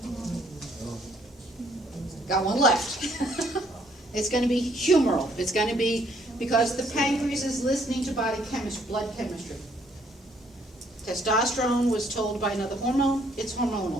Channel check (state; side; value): normal; both; correlation 0.66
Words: Got one left. It's going to be humoral. It's going to be Because the pancreas is listening to body chemistry, blood chemistry. Testosterone was told by another hormone, it's